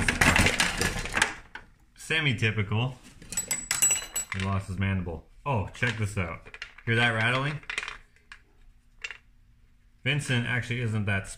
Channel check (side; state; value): both; identical; correlation 1.00